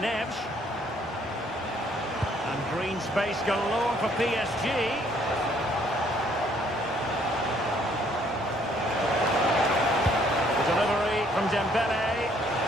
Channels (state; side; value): normal; both; correlation 0.64